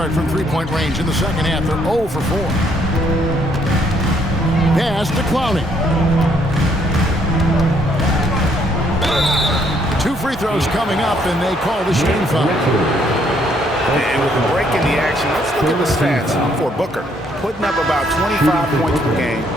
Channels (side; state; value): both; normal; correlation 0.68